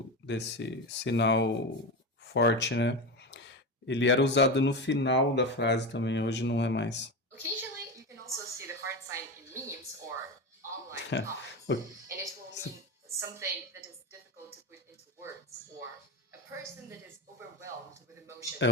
desse sinal forte, né? Ele era usado no final da frase também, hoje não é mais. Occasionally, you can also see the heart sign in memes or online comments, and it will mean something that is difficult to put into words, or a person that is overwhelmed with emotion. É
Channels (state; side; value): normal; both; correlation 0.20